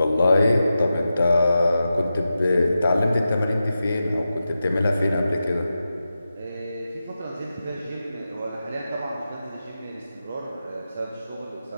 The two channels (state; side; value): inverted; both; correlation -0.91